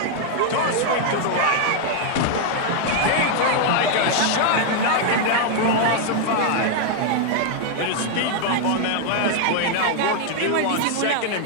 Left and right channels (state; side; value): different; both; correlation 0.00